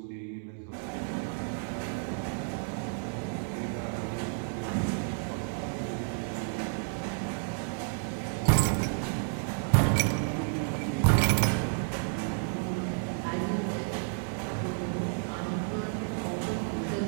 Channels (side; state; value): left; silent; 57 dB below the other